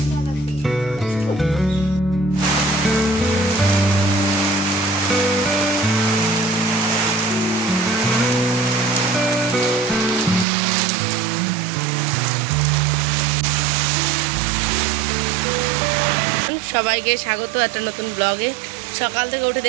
সবাইকে স্বাগত একটা নতুন ব্লগে। সকাল থেকে উঠে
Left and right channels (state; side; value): drops out; left; at 10.5 s